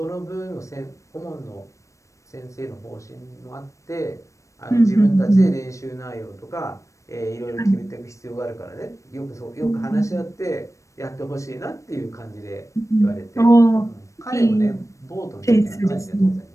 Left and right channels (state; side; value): late; right; 0.15 ms